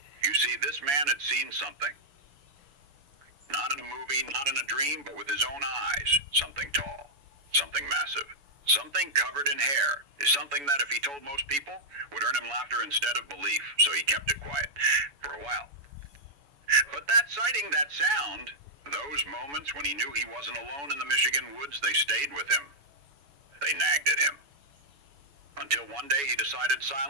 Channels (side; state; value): left; late; 7.1 ms